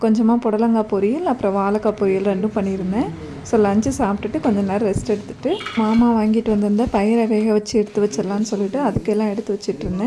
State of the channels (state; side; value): identical; both; correlation 1.00